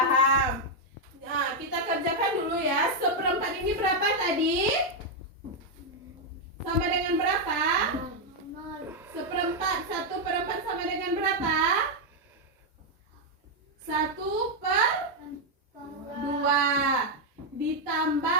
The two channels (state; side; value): normal; both; correlation 0.01